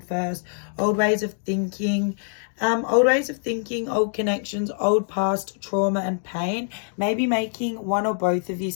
first. Old ways of thinking. Old connections, old past trauma and pain. Maybe making one or both of you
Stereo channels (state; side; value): silent; right; 62 dB below the other